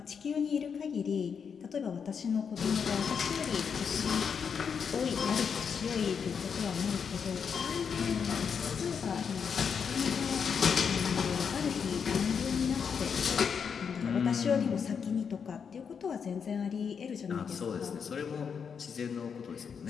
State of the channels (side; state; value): right; quieter; 6.6 dB